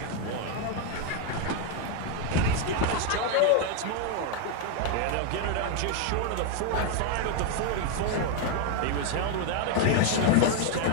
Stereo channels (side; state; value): both; different; correlation 0.01